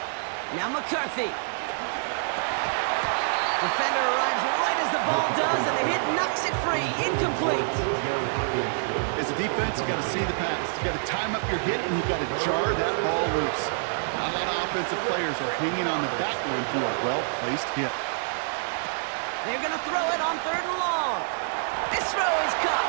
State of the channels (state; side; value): silent; left; digital silence